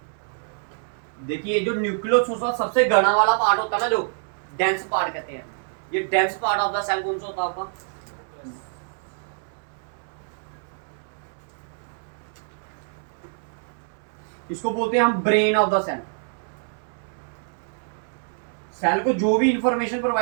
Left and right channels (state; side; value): silent; left; 61 dB below the other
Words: देखिए जो न्यूक्लियस होता है सबसे घना वाला पार्ट होता है ना, जो डेंस पार्ट कहते हैं, ये dense part of the cell कौन सा होता है आपका? इसको बोलते हैं हम brain of the cell. Cell को जो भी इंफॉर्मेशन